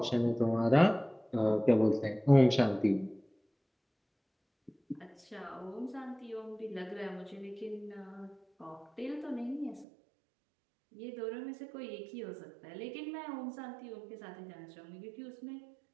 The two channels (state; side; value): drops out; left; at 9.9 s